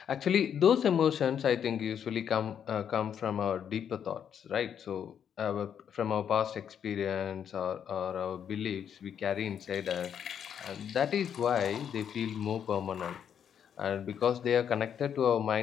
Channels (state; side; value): quieter; right; 8.5 dB